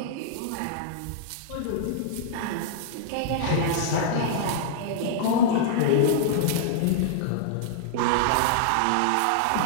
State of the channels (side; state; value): both; different; correlation -0.01